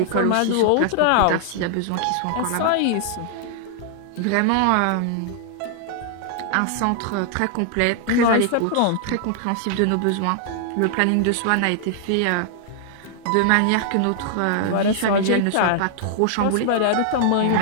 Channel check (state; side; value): different; both; correlation -0.01